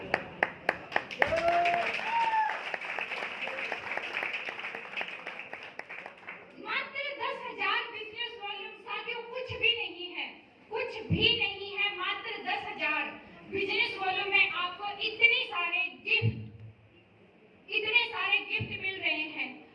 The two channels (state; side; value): identical; both; correlation 1.00